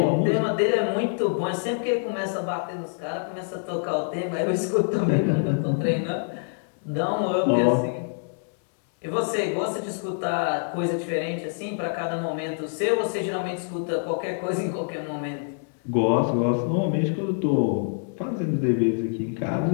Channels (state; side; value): silent; right; digital silence